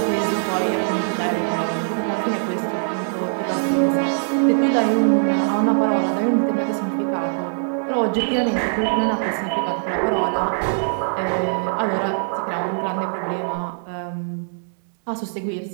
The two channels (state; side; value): silent; left; digital silence